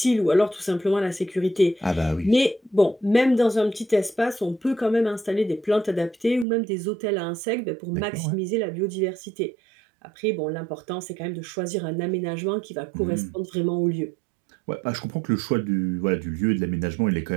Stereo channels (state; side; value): drops out; left; at 6.5 s